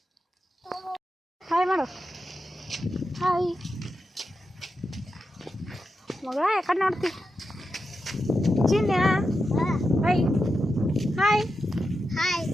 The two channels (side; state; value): both; normal; correlation 0.89